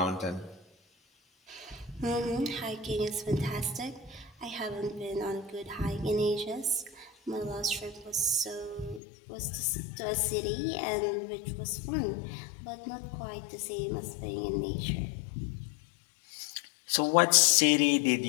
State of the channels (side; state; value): right; drops out; at 9.0 s